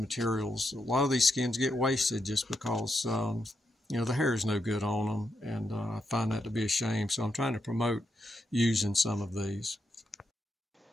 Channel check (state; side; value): normal; both; correlation 0.82